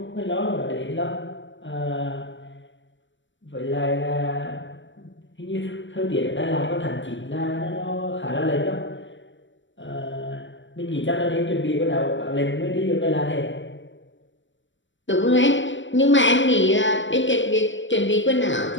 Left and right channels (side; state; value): right; late; 0.54 ms